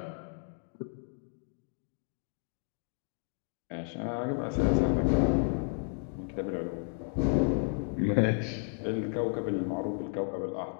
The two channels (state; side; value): silent; right; 56 dB below the other